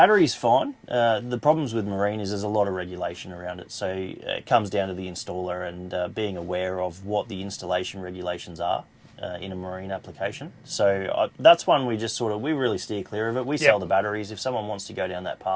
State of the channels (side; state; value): both; identical; correlation 1.00